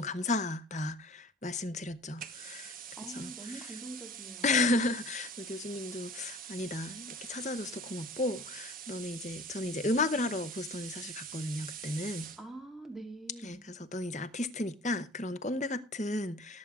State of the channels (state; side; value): normal; both; correlation 0.45